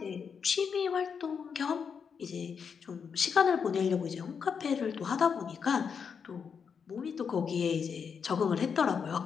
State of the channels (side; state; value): right; quieter; 6.5 dB